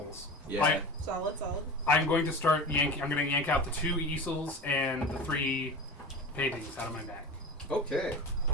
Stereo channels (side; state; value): both; normal; correlation 0.31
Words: Yeah. Solid. I'm going to start yanking. I'm going to yank out the 2 easels and the 3 paintings out of my bag, Okay.